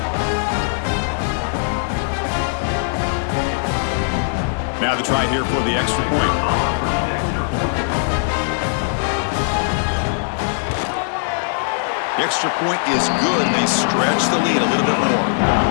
Now the try here for the extra point. The extra point is good. They stretch the lead a little bit more.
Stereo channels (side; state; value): right; silent; digital silence